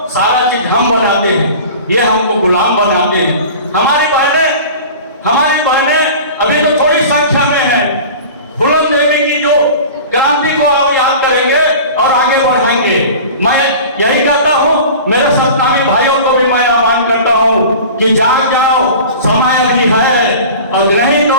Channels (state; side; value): inverted; both; correlation -0.38